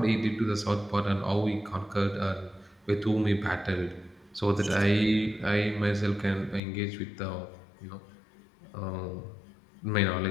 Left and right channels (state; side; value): drops out; right; at 6.6 s